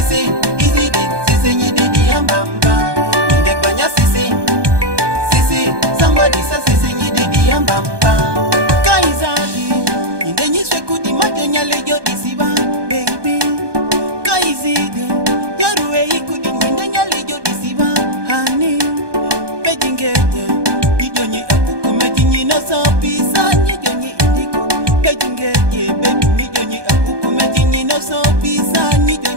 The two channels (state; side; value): late; left; 1.2 ms